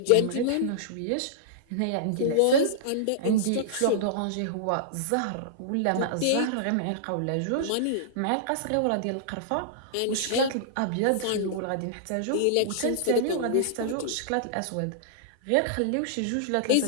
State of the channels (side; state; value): both; different; correlation -0.02